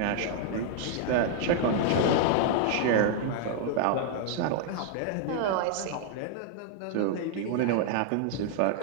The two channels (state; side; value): different; both; correlation 0.00